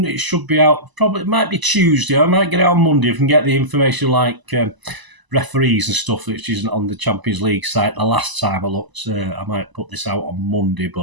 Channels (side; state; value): left; late; 1.0 ms